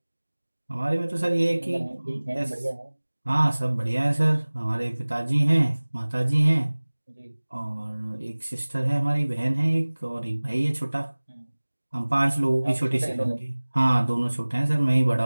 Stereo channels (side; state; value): both; inverted; correlation -1.00